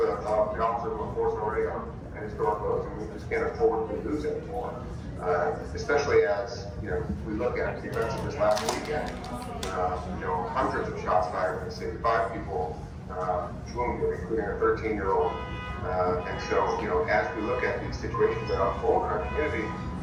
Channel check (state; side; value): identical; both; correlation 1.00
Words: of the officers of the force already are at historic lows, and we just can't afford to lose anymore. Especially as we look at the events of this last weekend. Hundreds of shots fired in the city, 5 people wounded, including a 13-year-old And so, you know, as we look at these situations that unfold in our community,